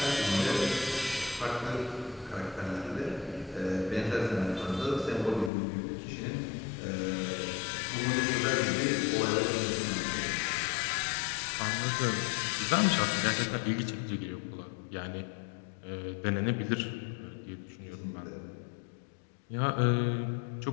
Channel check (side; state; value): right; drops out; at 5.5 s